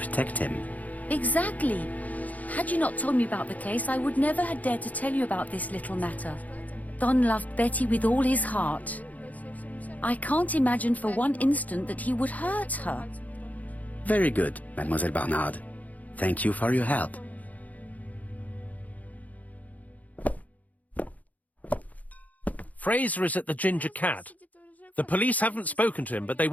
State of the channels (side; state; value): right; late; 0.076 ms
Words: him. Exactly. Had you not told me about the case, I would never have dared to tell you about this little matter. Don loved Betty with all his heart. I can't imagine for one instant that he would hurt her. Very good, Mademoiselle Barnard. Thank you for your help. Fraser is at the Ginger Cat. The police haven't spoken to him, but they